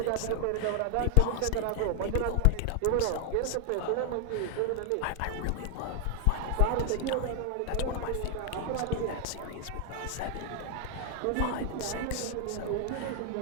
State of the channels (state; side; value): different; both; correlation 0.00